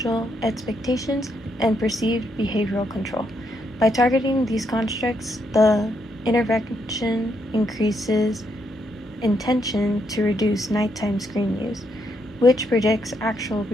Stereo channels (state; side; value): normal; both; correlation 0.77